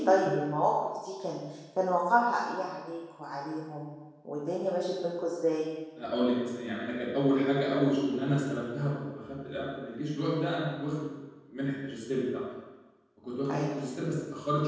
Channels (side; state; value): both; identical; correlation 1.00